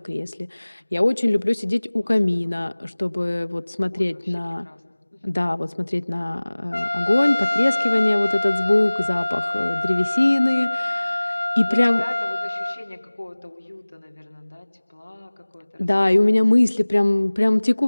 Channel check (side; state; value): both; inverted; correlation -1.00